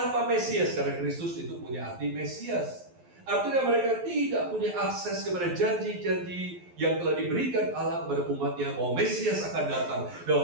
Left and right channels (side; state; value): left; late; 12 ms